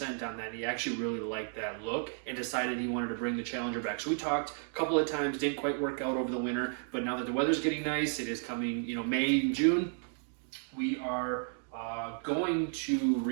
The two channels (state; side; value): silent; left; 56 dB below the other